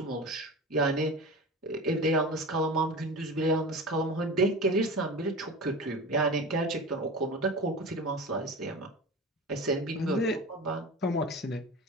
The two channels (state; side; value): normal; both; correlation 0.31